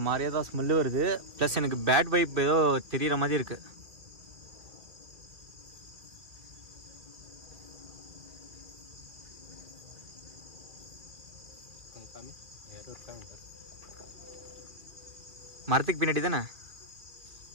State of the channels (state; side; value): late; left; 2.4 ms